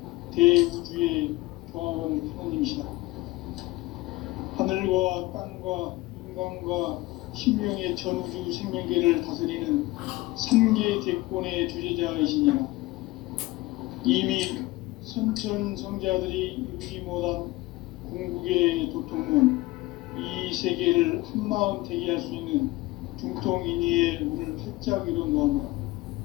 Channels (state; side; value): quieter; right; 19.9 dB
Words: 대우주의 조화원 하나님이시다. 하늘과 땅과 인간과 신명의 전우주 생명계를 다스리는 3개 대권의 주제자이시니라. 이미 선천 성자들이 이루지 못한 궁극의 도통문, 이 세계를 한마음 되게 할 수 있는 중통인의의 문을 활짝 열어놓았노라.